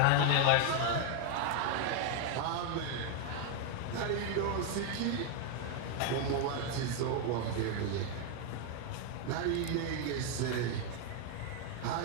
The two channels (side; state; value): both; different; correlation 0.01